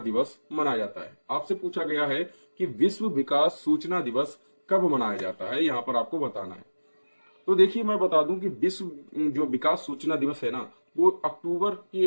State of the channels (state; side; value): inverted; both; correlation -1.00